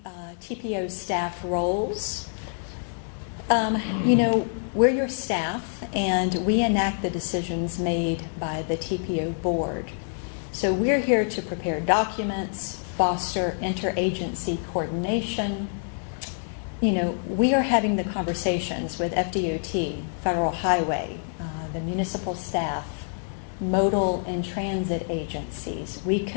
TPO staff roles. You know, we're your staff, and we enact the decisions made by the TPO board. So we're here to prepare documents, foster interagency coordination. You know, we are having the conversations with FDOT, Federal Highway, the municipal staff, modal and transit agencies. We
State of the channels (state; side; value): silent; right; 61 dB below the other